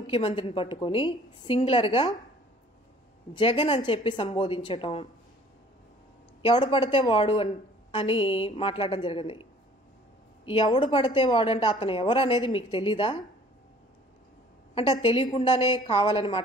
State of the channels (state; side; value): normal; both; correlation 0.53